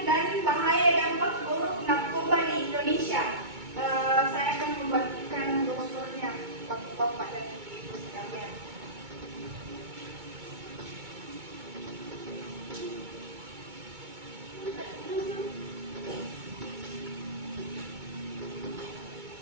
dan bahaya dampak buruk narkoba di Indonesia. Saya akan membagikan brosurnya Bapak-bapak dan Ibu sekalian.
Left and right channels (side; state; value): left; late; 2.2 ms